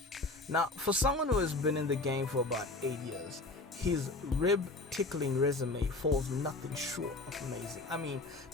Now, for someone who has been in the game for about 8 years, his rib-tickling resume falls nothing short of amazing. I mean,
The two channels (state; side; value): quieter; right; 3.0 dB